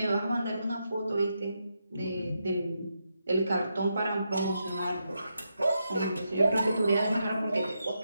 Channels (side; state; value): both; inverted; correlation -0.84